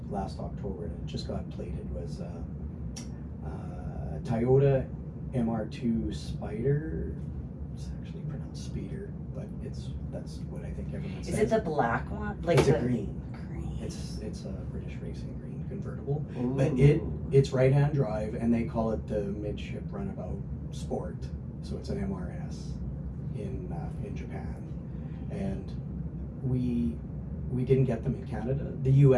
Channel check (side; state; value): both; identical; correlation 1.00